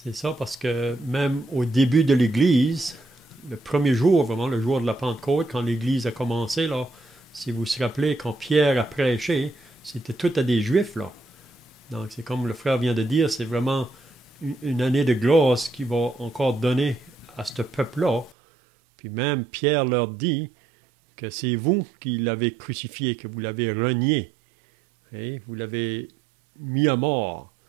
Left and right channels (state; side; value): drops out; left; at 18.4 s